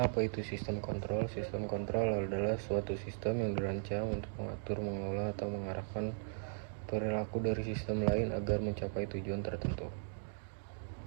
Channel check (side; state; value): left; silent; digital silence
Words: apa itu sistem kontrol? Sistem kontrol adalah suatu sistem yang dirancang untuk mengatur, mengelola, atau mengarahkan perilaku dari sistem lain agar mencapai tujuan tertentu.